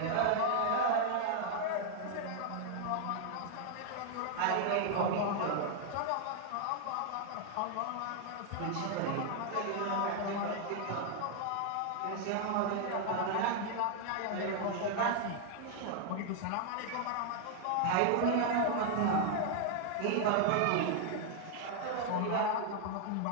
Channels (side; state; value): both; different; correlation 0.00